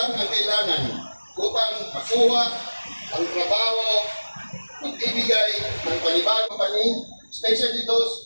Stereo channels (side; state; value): both; inverted; correlation -1.00